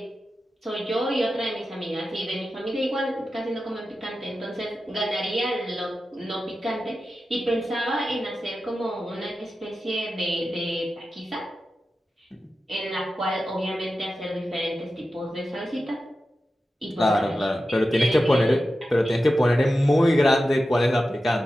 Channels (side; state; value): both; normal; correlation 0.92